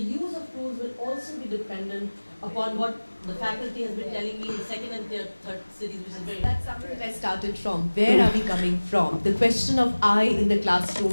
of tools will also be dependent upon what the faculty has been telling me in the second and third cities, which is very... That's something that I started from. Where are we coming from? The question of I in the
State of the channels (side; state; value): both; inverted; correlation -1.00